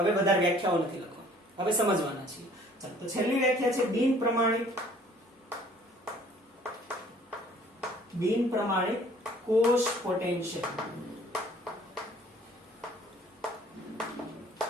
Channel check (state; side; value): normal; both; correlation 0.55